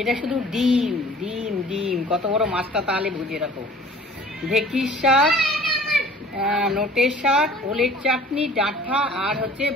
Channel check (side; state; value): both; normal; correlation 0.48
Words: এটা শুধু ডিম ডিম ডিম। কত বড় মাছটা তাহলে বুঝে রাখো। ঢেঁকির শাক, নোটের শাক, ওলের চাটনি, ডাঁটা আর হচ্ছে